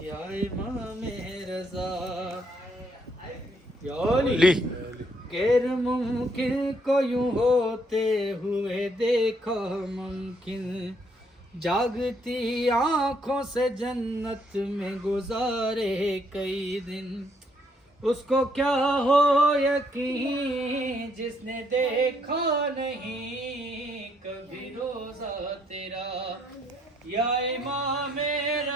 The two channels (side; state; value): both; normal; correlation 0.71